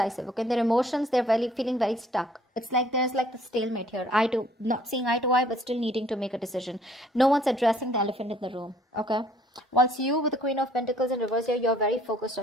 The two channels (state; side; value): normal; both; correlation 0.60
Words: okay? Their emotions, they're feeling very stuck. It's like there's like the stalemate here. Not seeing eye to eye, but still needing to make a decision. No one's addressing the elephant in the room, okay? Once you, with the Queen of Pentacles in reverse here, you're very focused